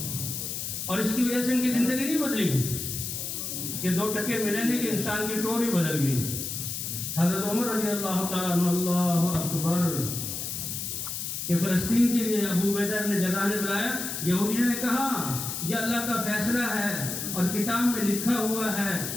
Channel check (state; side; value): noise; left; hiss, 4 dB below the sound